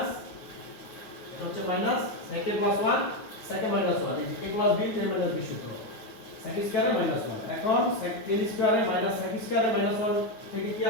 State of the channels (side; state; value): right; late; 9.5 ms